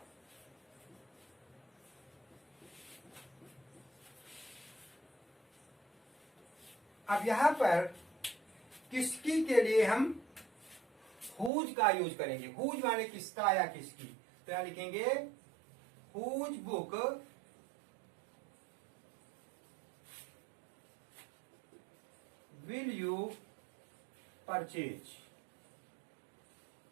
अब यहां पर किसकी के लिए हम हुज का यूज करेंगे। हुज माने किसका या किसकी, तो यहां लिखेंगे whose book will you purchase.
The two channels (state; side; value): drops out; left; at 11.5 s